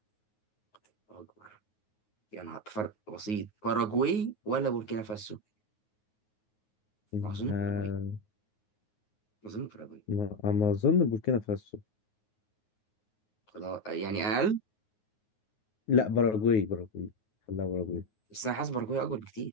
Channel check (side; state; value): right; late; 9.4 ms